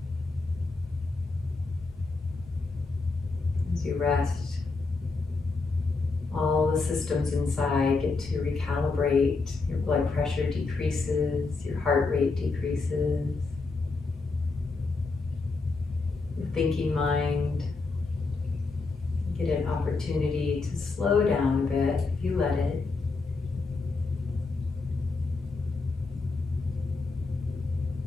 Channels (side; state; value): right; quieter; 3.9 dB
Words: As you rest, all the systems inside get to recalibrate. Your blood pressure decreases, your heart rate decreases, your thinking mind get an opportunity to slow down a bit if you let it.